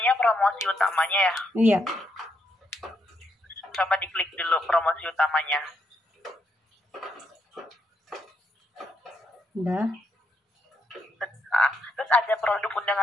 promosi utamanya ya. Iya. Coba diklik dulu promosi utamanya. Udah. Nah, terus ada produk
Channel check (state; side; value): normal; both; correlation 0.78